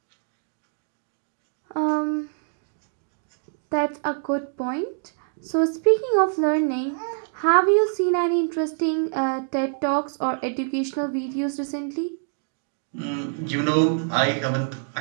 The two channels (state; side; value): silent; left; digital silence